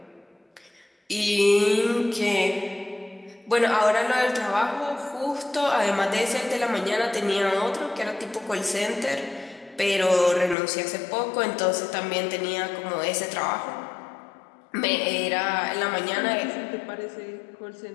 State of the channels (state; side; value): drops out; right; at 10.6 s